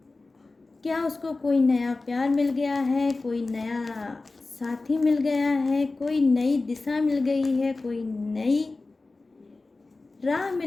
क्या उसको कोई नया प्यार मिल गया है, कोई नया साथी मिल गया है, कोई नई दिशा मिल गई है, कोई नई राह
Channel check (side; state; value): right; quieter; 3.5 dB